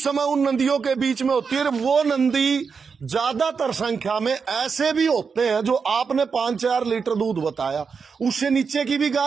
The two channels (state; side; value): quieter; left; 5.6 dB